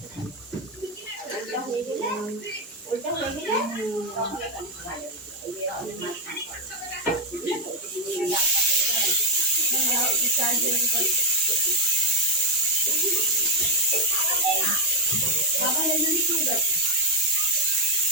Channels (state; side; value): normal; both; correlation 0.06